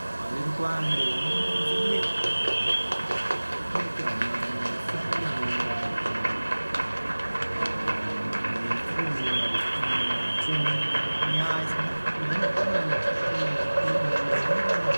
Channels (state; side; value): inverted; both; correlation -1.00